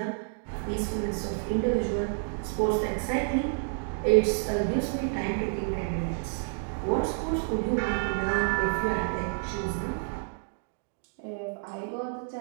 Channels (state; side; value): silent; left; digital silence